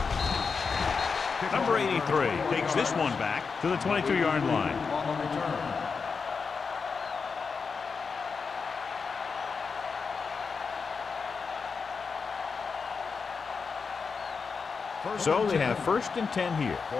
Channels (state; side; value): quieter; right; 5.2 dB